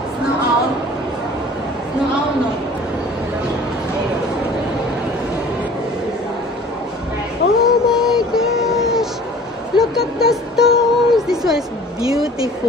Snow owl? Snow owl, no? Oh my gosh! Look at the stones! This one is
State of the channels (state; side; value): normal; both; correlation 0.47